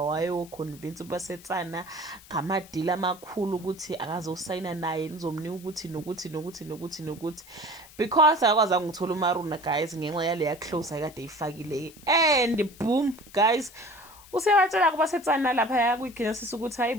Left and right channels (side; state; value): left; noise; hiss, 21 dB below the sound